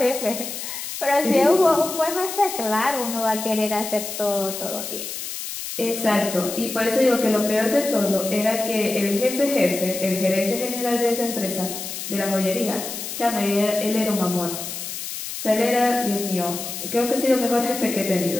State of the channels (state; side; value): noise; left; hiss, 7 dB below the sound